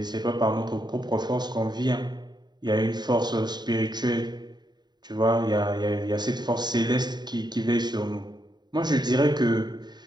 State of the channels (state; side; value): late; left; 0.21 ms